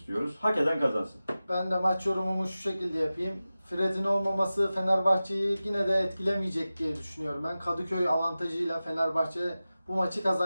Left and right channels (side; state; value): both; inverted; correlation -0.96